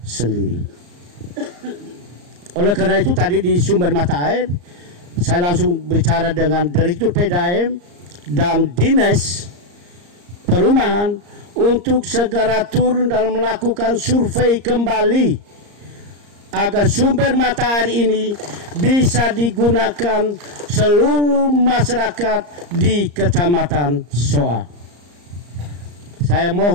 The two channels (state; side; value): late; left; 34 ms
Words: Oleh karena itu tadi di sumber mata air saya langsung bicara dengan Direktur PDAM dan Dinas Perumahan untuk segera turun dan melakukan survei kembali agar sumber mata air ini bisa digunakan seluruh masyarakat di Kecamatan Soa. Saya